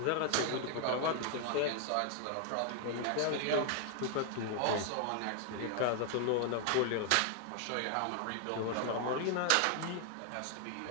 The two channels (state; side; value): different; both; correlation 0.00